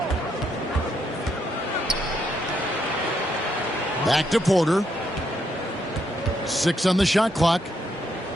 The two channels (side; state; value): both; normal; correlation 0.76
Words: Back to Porter. 6 on the shot clock.